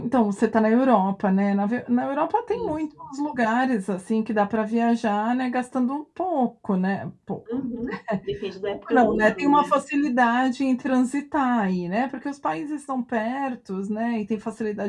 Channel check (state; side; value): identical; both; correlation 1.00